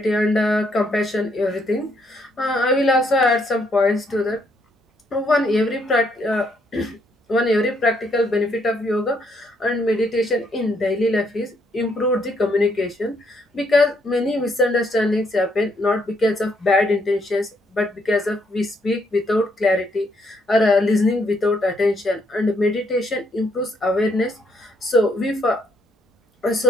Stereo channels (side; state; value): both; normal; correlation 0.73